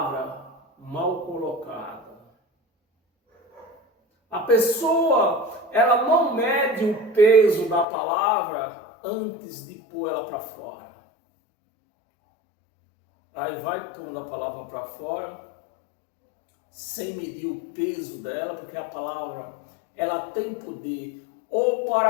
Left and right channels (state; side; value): drops out; right; at 7.9 s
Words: mal colocada. A pessoa, ela não mede o peso da palavra antes de pôr ela para fora. Aí vai pondo a palavra para fora, sem medir o peso dela, porque a palavra, ela tem poder ou